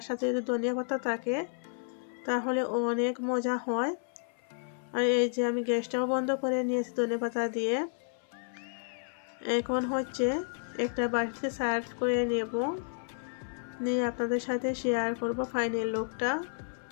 সাথে যদি ধনিয়া পাতা থাকে তাহলে অনেক মজা হয়। আর এই যে আমি গ্যাসটাও বন্ধ করে নিয়েছি ধনেপাতা দিয়ে। এখন হচ্ছে একটা বাটিতে সার্ভ করে নেব, নিয়ে আপনাদের সাথে শেয়ার করব ফাইনাল লুকটা।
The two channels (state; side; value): silent; right; 57 dB below the other